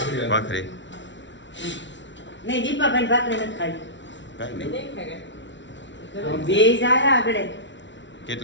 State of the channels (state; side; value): late; right; 0.54 ms